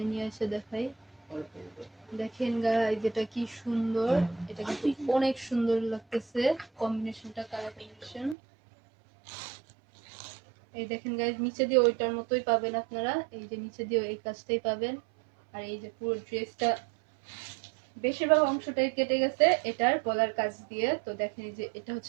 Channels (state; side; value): drops out; left; at 8.3 s